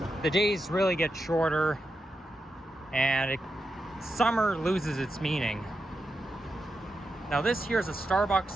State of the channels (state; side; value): normal; both; correlation 0.87